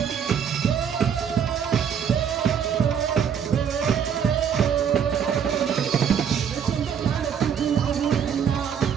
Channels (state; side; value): quieter; left; 7.8 dB